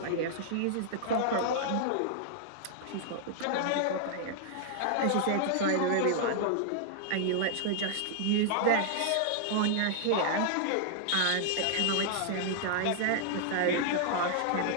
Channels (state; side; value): different; both; correlation -0.01